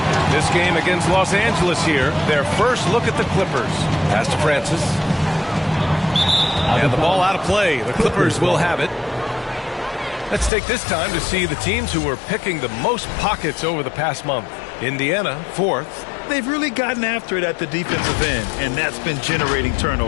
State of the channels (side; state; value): right; drops out; at 10.5 s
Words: This game against Los Angeles here. Their first look at the Clippers. Pass to Francis. And the ball out of play. The Clippers will have it. Let's take this time to see the teams who were picking the most pockets over the past month. Indiana, 4th. They've really gotten after it at the defensive end, and that's been generating